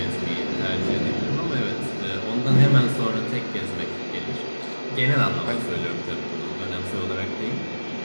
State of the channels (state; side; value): inverted; both; correlation -1.00